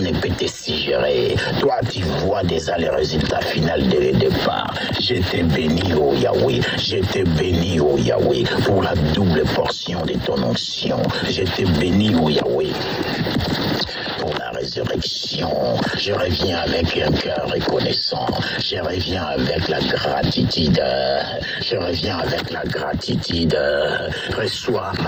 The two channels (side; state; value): both; identical; correlation 1.00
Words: ne peut te suggérer. Toi, tu vois déjà les résultats finaux dès le départ. Je te bénis, oh Yahweh. Je te bénis, oh Yahweh, pour la double portion de ton onction. Je te bénis, oh Yahweh, pour la résurrection. Je reviens avec un cœur reconnaissant. Je reviens avec la gratitude. Je reviens avec la gratitude. Reçois